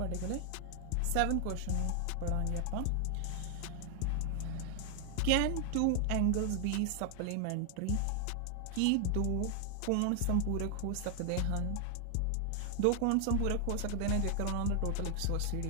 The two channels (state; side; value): different; both; correlation 0.00